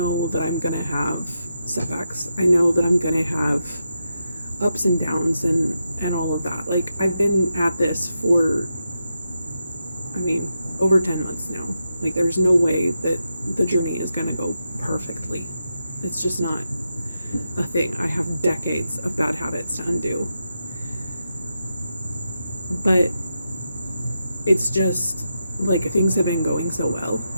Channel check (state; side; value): inverted; both; correlation -0.86